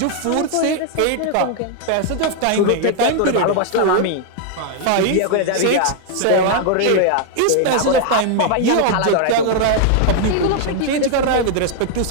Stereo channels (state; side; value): different; both; correlation 0.00